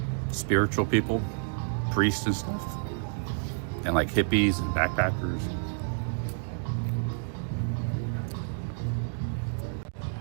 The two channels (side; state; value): left; silent; digital silence